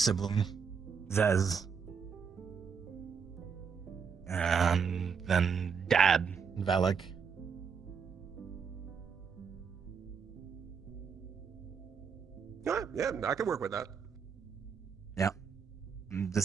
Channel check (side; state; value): left; quieter; 6.2 dB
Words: Zez. And then Dad, Valak. Yeah, I can work with that. Yeah.